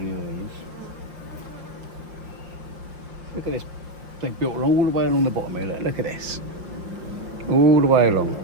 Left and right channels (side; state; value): left; late; 5.7 ms